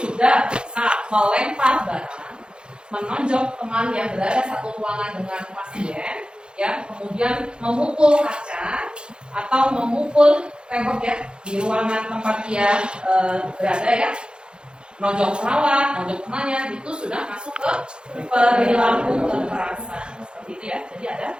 bisa melempar barang, menonjok teman yang berada satu ruangan dengan pasien, ya, kemudian memukul kaca atau memukul tembok ya di ruangan tempat dia berada ya, nonjok perawat, nonjok temannya, itu sudah masuk ke perilaku kekerasan seperti itu ya. Jadi ada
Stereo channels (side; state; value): left; late; 0.050 ms